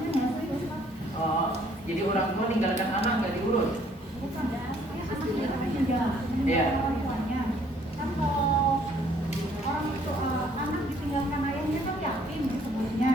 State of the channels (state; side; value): normal; both; correlation 0.62